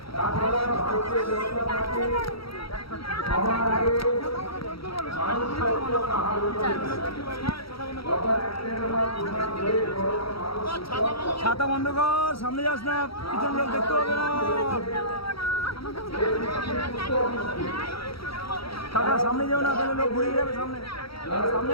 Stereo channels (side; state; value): right; late; 0.75 ms